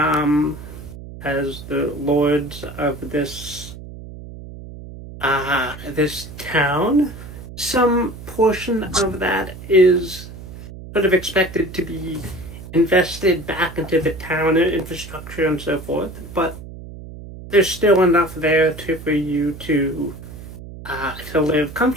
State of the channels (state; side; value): noise; right; hum, 14 dB below the sound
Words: lords of this town. Some portion of that is sort of expected to be invested back into the town infrastructure and so forth, but there's still enough there for you to live